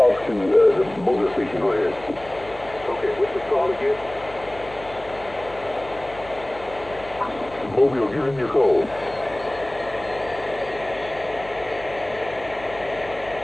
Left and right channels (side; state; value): left; noise; hum, 19 dB below the sound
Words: to the mobile station. Go ahead. Okay, what's the call again? Mobile, give him your code.